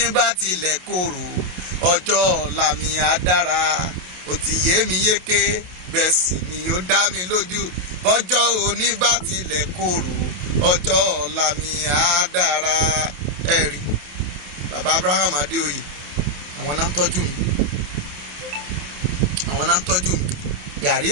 bá tilẹ̀ korò, ọjọ́ ọ̀la mi á dára. Ó ti yé mi yéké, bẹ́ẹ̀ sì ni ó dá mi lójú. Ọjọ́ òní bá tilẹ̀ korò, ọjọ́ ọ̀la mi á dára. Ẹ rí, bàbá Abraham Adéoyè, àwọn náà ń tọ́jú mi. Àwọn náà ń tọ́jú mi. Gàrí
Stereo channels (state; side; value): late; left; 28 ms